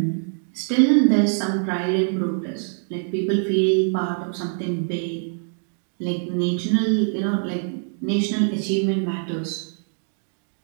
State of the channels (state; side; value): silent; left; 60 dB below the other